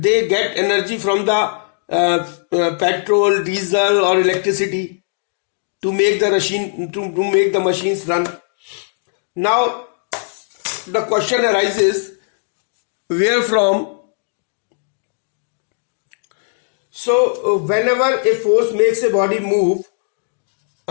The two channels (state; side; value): silent; right; digital silence